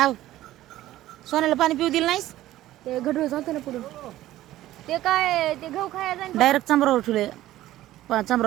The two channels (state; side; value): quieter; left; 14.8 dB